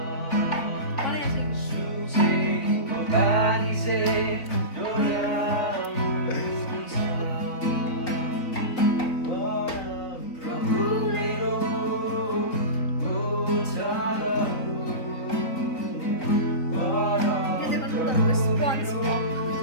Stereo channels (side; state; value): right; late; 3.9 ms